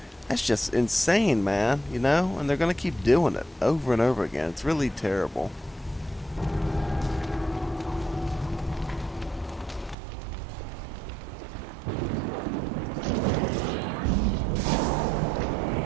that's just insane, man, you know? And they're gonna keep doing it over and over again. It's really terrible.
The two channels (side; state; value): left; drops out; at 10.0 s